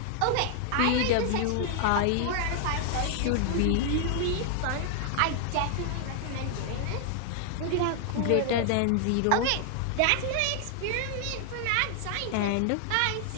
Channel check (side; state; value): both; different; correlation 0.00